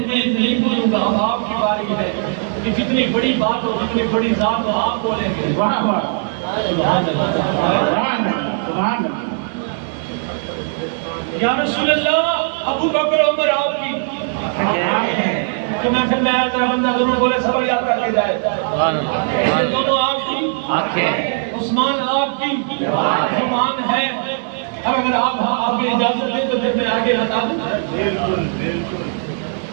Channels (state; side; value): silent; left; digital silence